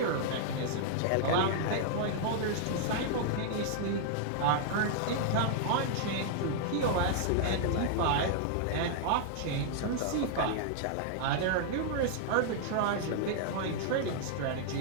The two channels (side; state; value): both; different; correlation -0.01